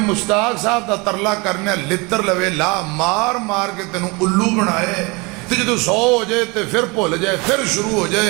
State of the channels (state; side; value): quieter; left; 27.2 dB